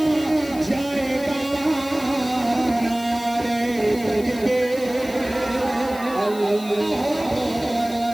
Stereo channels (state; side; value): noise; left; hiss, 17 dB below the sound